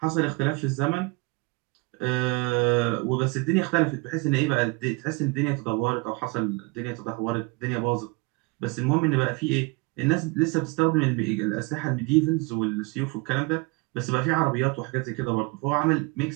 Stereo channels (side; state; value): left; quieter; 27.2 dB